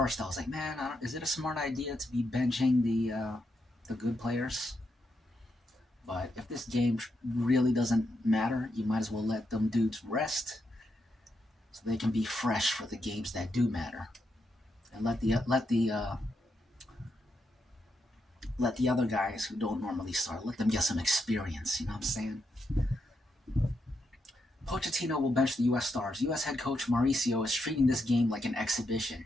I was like, man, is it a smart idea to be benching the good players? But if this game really doesn't matter, you might as well let them dudes rest so they can be fresh for the games that do matter. And let the other guys who don't normally start, let them get some experience, you know what I'm saying? Pochettino will bench the U.S. stars. U.S. head coach Mauricio is treating this game like an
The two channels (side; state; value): both; normal; correlation 0.82